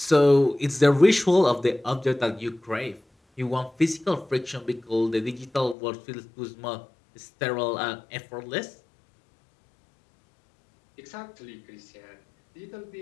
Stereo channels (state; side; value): drops out; right; at 5.8 s